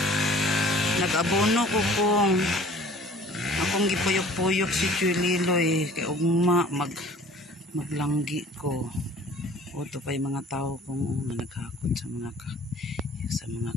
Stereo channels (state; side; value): normal; both; correlation 0.50